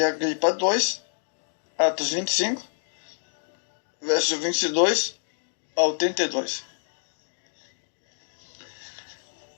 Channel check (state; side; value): silent; right; digital silence